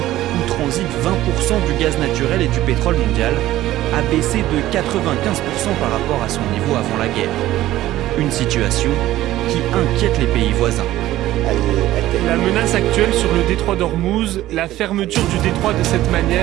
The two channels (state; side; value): quieter; left; 15.0 dB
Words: transite 20% du gaz naturel et du pétrole mondial, a baissé de 95% par rapport à son niveau avant la guerre. Une situation qui inquiète les pays voisins. La menace actuelle sur le détroit d'Ormuz, la fermeture du détroit de cette